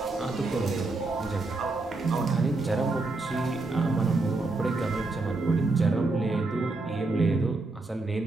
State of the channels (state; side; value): quieter; left; 3.3 dB